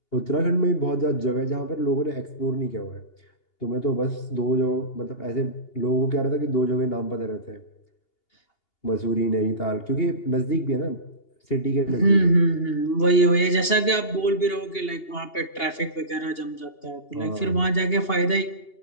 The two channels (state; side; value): late; right; 2.8 ms